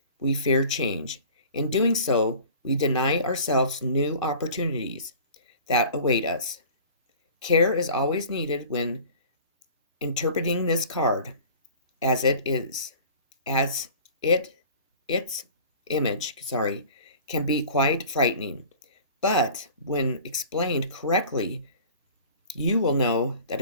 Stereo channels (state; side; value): inverted; both; correlation -0.44